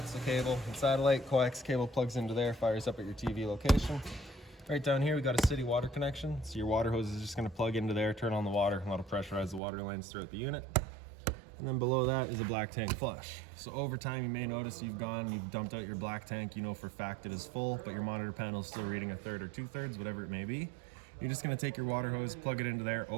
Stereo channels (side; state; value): left; drops out; at 9.6 s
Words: So cable and satellite, coax cable plugs into there, fires up at your TV location. Right down here, we've got a city water connection. So your water hose is just gonna plug into there, turn on the water, and that'll pressurize the water lines throughout the unit. And then below that is a black tank flush. So over time, you may notice you've dumped out your black tank, you know for a fact it is full, but your monitor panel is still reading 1/3 or 2/3, whatever it may be. You're just gonna take your water hose, plug it into there,